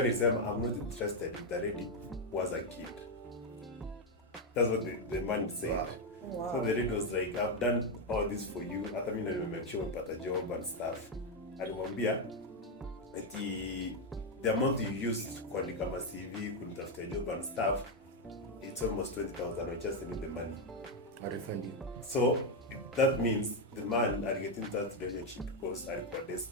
interested if the lady was a kid. That's what the man said. Wow. So the lady was like, I've done all this for you. Hata mimi na make sure umepata job and stuff. Alimwambia eti the amount you used kuandika CV, kunitafutia job and stuff, it's almost 20,000. I just need the money. I refund you. So that means the man are getting that relationship because are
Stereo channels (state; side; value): normal; both; correlation 0.04